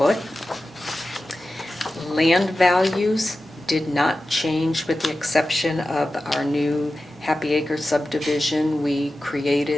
Land values did not change with the exception of our new Happy Acre subdivision. We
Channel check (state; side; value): normal; both; correlation 0.94